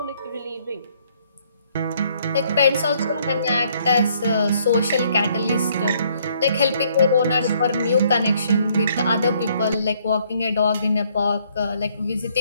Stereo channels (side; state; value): both; inverted; correlation -0.66